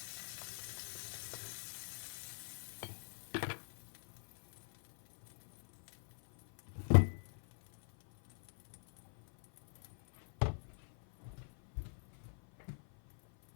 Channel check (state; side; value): silent; right; 50 dB below the other